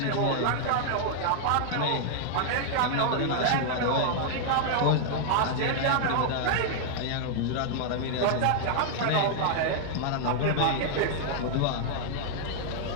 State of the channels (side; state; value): both; different; correlation -0.01